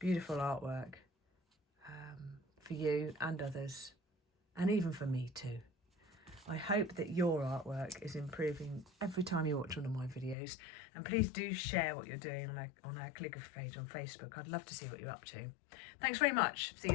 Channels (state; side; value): drops out; right; at 10.4 s